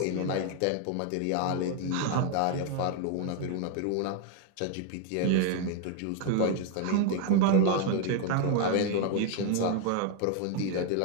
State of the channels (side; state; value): both; different; correlation 0.01